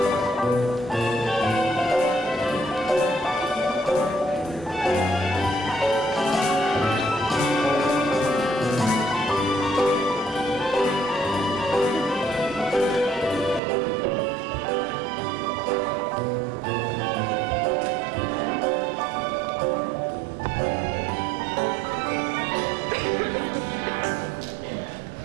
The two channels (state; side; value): drops out; left; at 13.6 s